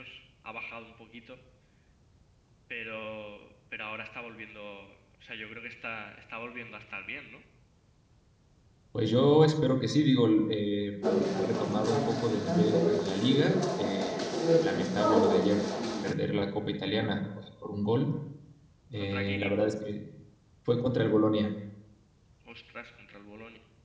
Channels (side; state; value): both; identical; correlation 1.00